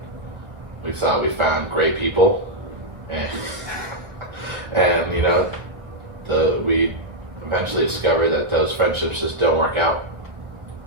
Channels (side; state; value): left; late; 1.6 ms